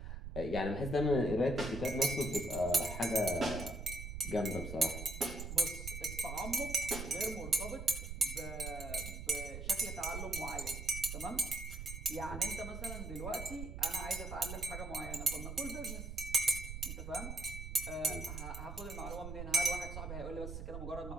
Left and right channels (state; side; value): noise; right; rumble, 7 dB below the sound